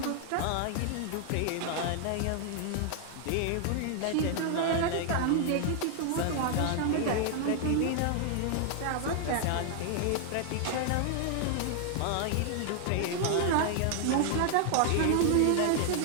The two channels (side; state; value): both; different; correlation 0.00